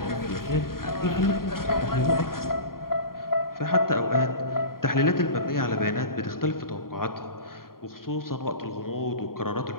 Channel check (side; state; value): right; late; 0.92 ms